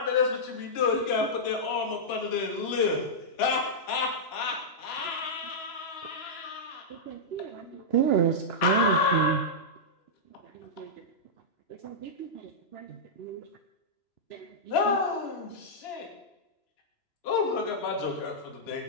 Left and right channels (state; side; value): late; right; 3.0 ms